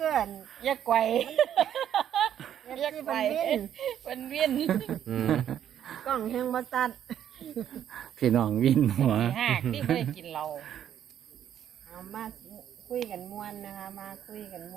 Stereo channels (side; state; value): left; quieter; 10.0 dB